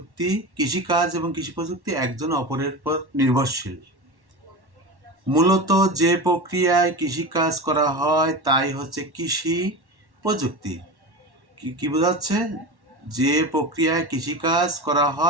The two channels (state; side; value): late; left; 1.1 ms